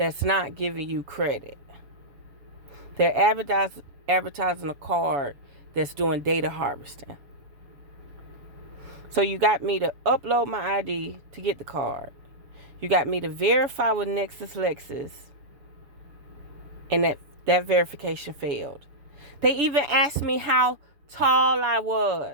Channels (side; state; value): left; late; 7.1 ms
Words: not giving you credit. They're advertising a card that's doing data harvesting. So you got me to upload my ID to get the card. You got me to verify with Lexus, and that verification failed. They even asked me how tall I